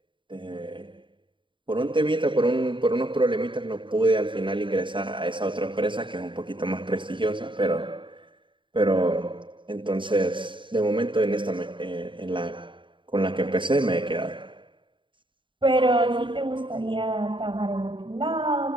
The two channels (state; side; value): late; left; 0.24 ms